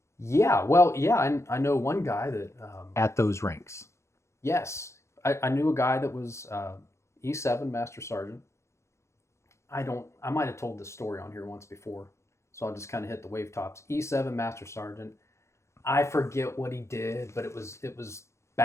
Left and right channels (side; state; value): right; late; 0.14 ms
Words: Yeah, well, yeah, I know one guy that, at those ranks. yes, I knew a guy that was E7 master sergeant. I might have told this story on here once before, so I'll just kind of hit the wave tops. E7 master sergeant. I forget what he did, but it was